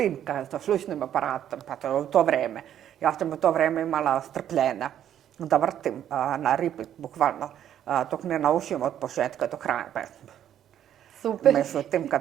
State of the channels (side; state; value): left; quieter; 10.4 dB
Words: sa slušnim aparatom, pa to je u to vreme. Ja sam u to vreme imala strpljenja da vrtim na repeat, bukvalno, dok ne naučim od početka do kraja pesmu. Super, Međutim,